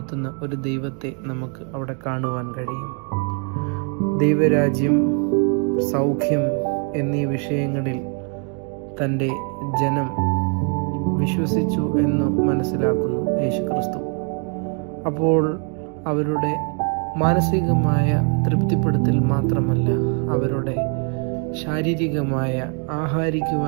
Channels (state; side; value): quieter; left; 39.8 dB